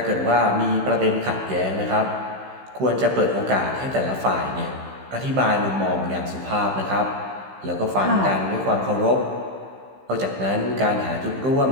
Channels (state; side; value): late; left; 15 ms